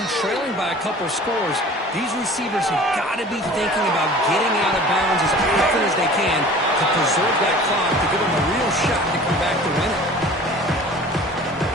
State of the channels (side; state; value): both; normal; correlation 0.44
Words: trailing by a couple scores, these receivers have got to be thinking about getting out of bounds as often as they can to preserve that clock, to give them a real shot to come back to win it.